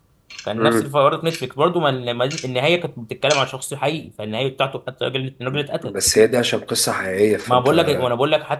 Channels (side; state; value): both; identical; correlation 1.00